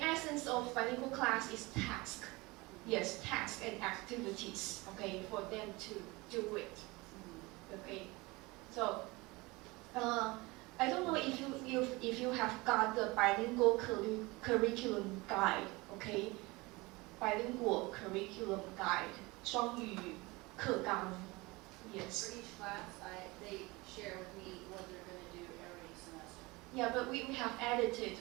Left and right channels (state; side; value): quieter; left; 23.4 dB